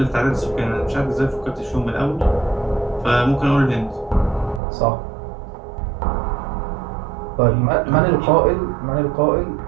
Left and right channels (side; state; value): left; drops out; at 4.6 s